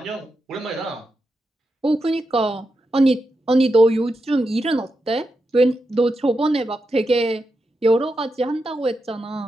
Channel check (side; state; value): both; normal; correlation 0.87